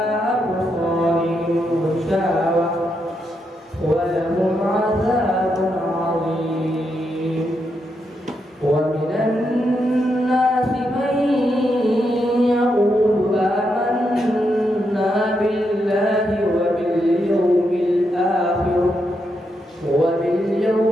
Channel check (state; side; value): normal; both; correlation 0.82